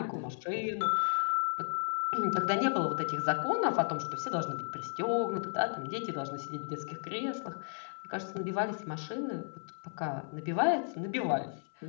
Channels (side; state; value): right; silent; 55 dB below the other